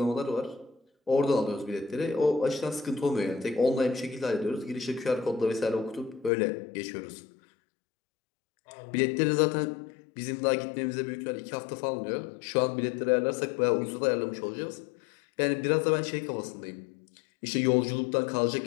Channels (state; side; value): drops out; right; at 6.3 s